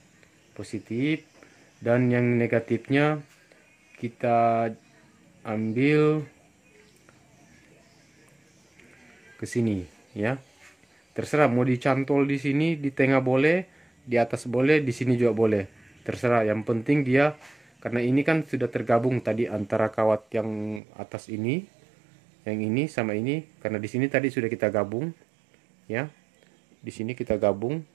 positif, dan yang negatifnya kita ambil ke sini ya. Terserah mau dicantol di sini, di tengah boleh, di atas boleh, di sini juga boleh. Terserah, yang penting dia karena ini kan sudah tergabung tadi antara kawat yang atas ini, yang ini sama ini, karena di sini tadi sudah kita gabung ya. Di sini kita gabung.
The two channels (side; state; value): left; drops out; at 20.8 s